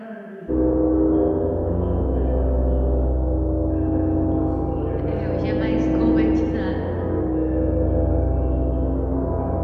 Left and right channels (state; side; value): identical; both; correlation 1.00